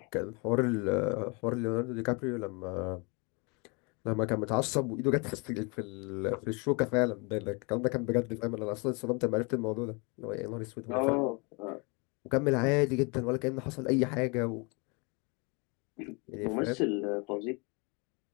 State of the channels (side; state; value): right; quieter; 31.1 dB